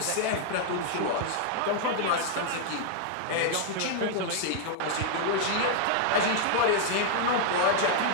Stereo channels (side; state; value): both; different; correlation 0.00